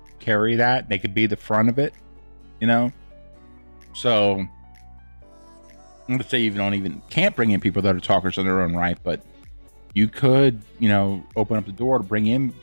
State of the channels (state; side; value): inverted; both; correlation -1.00